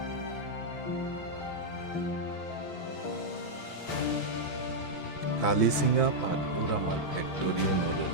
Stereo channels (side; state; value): right; late; 6.3 ms